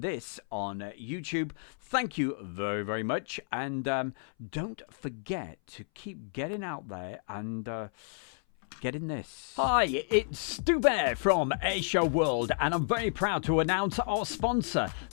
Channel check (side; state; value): right; silent; 57 dB below the other